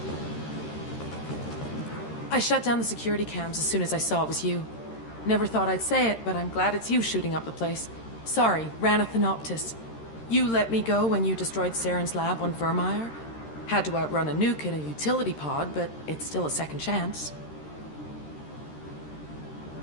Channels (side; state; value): right; late; 13 ms